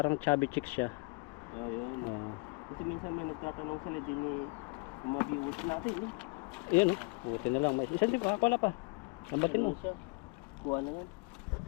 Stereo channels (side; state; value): right; quieter; 30.8 dB